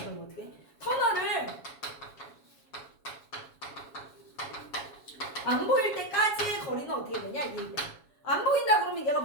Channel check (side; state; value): right; late; 7.2 ms